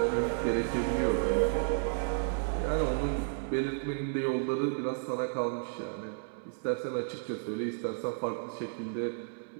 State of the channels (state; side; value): silent; left; digital silence